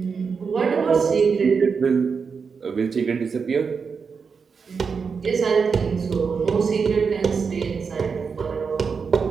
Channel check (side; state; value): left; quieter; 5.6 dB